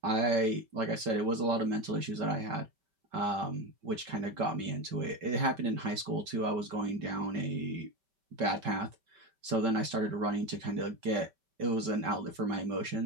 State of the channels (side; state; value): left; late; 5.2 ms